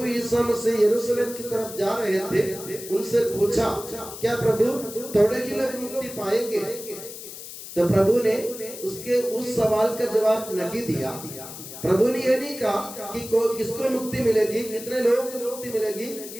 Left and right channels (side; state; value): left; noise; hiss, 12 dB below the sound